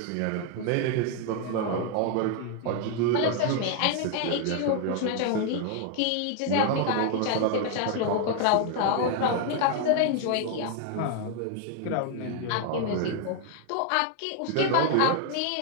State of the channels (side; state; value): both; different; correlation 0.00